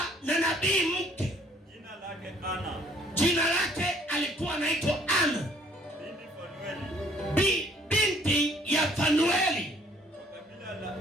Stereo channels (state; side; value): normal; both; correlation 0.61